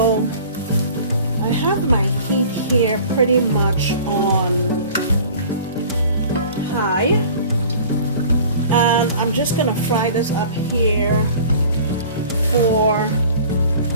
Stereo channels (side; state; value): both; inverted; correlation -0.45